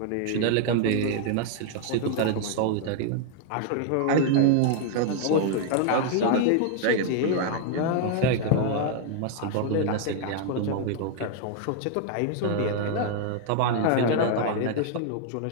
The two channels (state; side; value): different; both; correlation 0.00